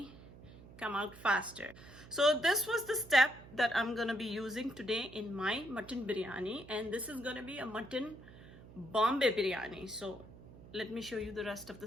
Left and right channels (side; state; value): right; noise; hum, 19 dB below the sound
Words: come out faster. So this was the step that I'm gonna be using today in my mutton biryani, and this is gonna be a mutton Bombay biryani. So let me show you the rest of